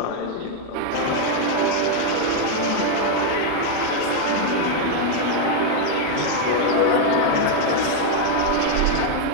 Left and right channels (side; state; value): both; different; correlation 0.01